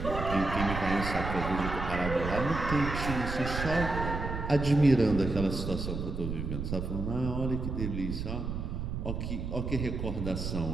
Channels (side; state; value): right; noise; rumble, 4 dB below the sound